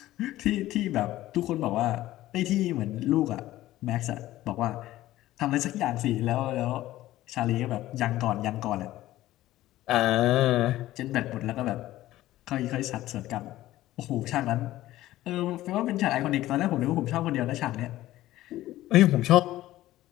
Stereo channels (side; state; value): right; quieter; 15.4 dB